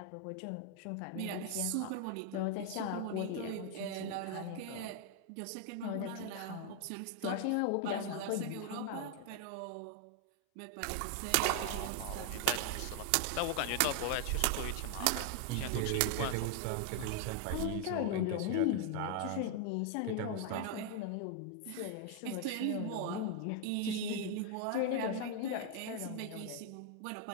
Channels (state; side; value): different; both; correlation 0.00